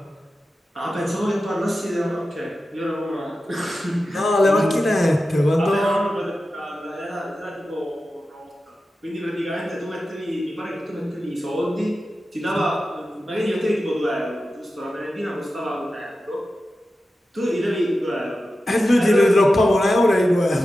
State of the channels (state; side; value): normal; both; correlation 0.92